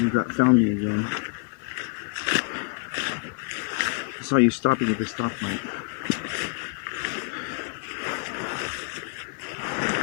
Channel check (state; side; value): quieter; right; 34.9 dB